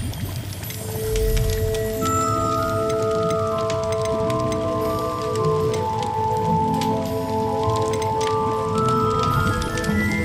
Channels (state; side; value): identical; both; correlation 1.00